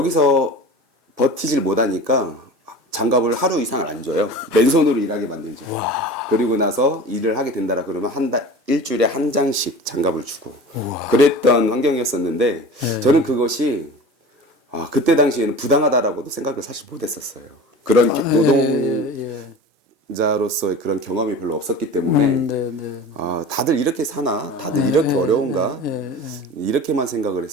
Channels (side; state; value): both; normal; correlation 0.37